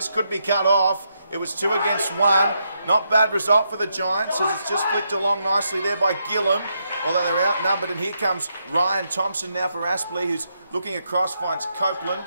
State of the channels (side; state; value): both; inverted; correlation -0.80